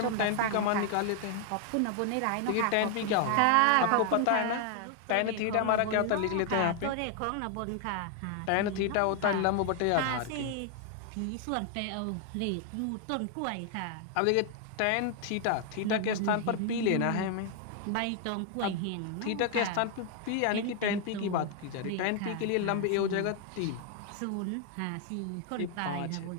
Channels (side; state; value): both; different; correlation 0.00